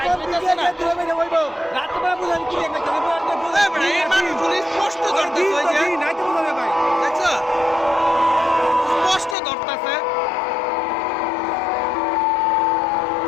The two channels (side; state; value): right; drops out; at 9.3 s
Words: রাত্রে বেলা বোঝা কি একটা এই মানুষগুলো স্পষ্ট ধরতেছে ওই যে নাইতে বোঝা যাবে ভাই দেখছো স্পষ্ট ধরতেছে